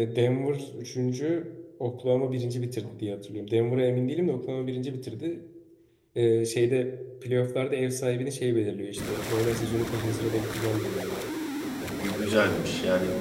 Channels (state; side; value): identical; both; correlation 1.00